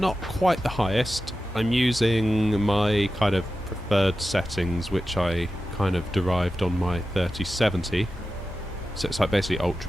quite the highest. I'm using my kind of preferred settings, which I kind of derived on my 3070. So it's like basically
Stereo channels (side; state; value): both; normal; correlation 0.93